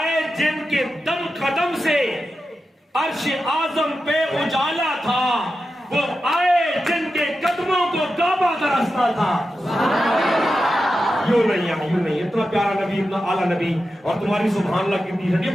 جن کے دم قدم سے عرش اعظم پہ اجالا تھا، وہ آئے جن کے قدموں کو کعبہ کا راستہ تھا۔ یوں نہیں، اتنا پیارا نبی، اتنا اعلیٰ نبی، اور تمہاری سبحان اللہ کتنی ہے۔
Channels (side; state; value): both; normal; correlation 0.91